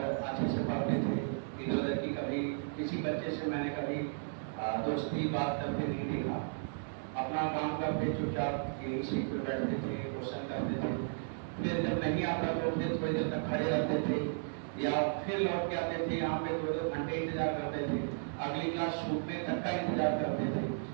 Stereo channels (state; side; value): silent; left; digital silence